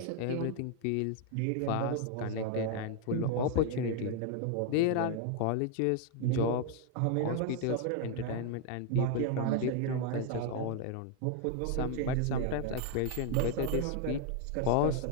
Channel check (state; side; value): different; both; correlation 0.00